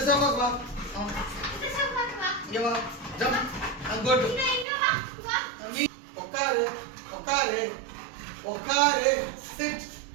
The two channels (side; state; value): left; drops out; at 4.7 s